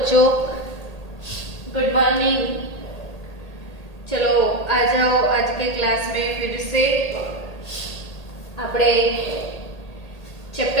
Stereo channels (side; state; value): right; late; 1.8 ms